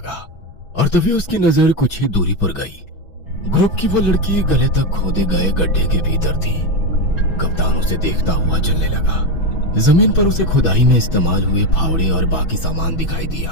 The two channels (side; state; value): right; late; 6.1 ms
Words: और तभी उसकी नजर कुछ ही दूरी पर गई। ग्रुप की वो लड़की गले तक खोदे गए गड्ढे के भीतर थी। कप्तान उसे देखता हुआ चलने लगा। जमीन पर उसे खुदाई में इस्तेमाल हुए फावड़े और बाकी सामान दिखाई दिया।